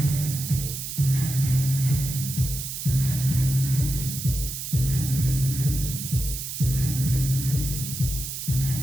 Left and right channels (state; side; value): noise; right; hiss, 6 dB below the sound